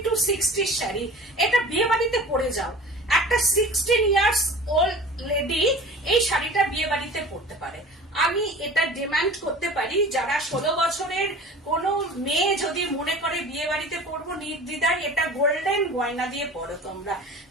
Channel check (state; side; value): normal; both; correlation 0.41